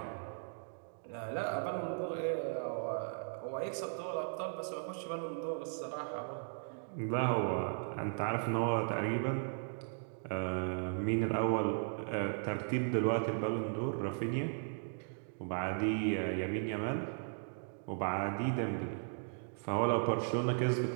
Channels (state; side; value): silent; left; digital silence